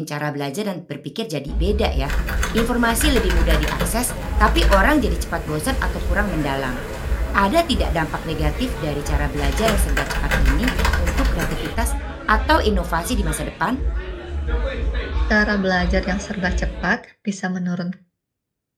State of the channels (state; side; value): identical; both; correlation 1.00